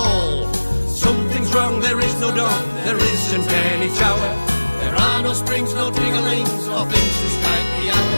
Something's wrong, there is no dawn, there isn't any shower. There are no springs, no tinglings, or things to strike the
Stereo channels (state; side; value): inverted; both; correlation -1.00